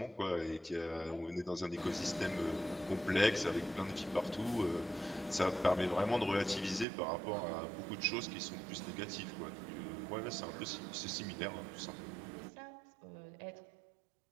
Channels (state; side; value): drops out; left; at 6.9 s